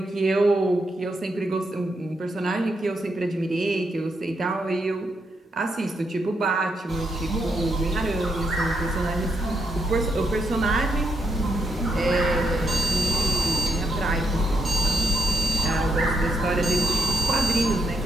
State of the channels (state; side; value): normal; both; correlation 0.79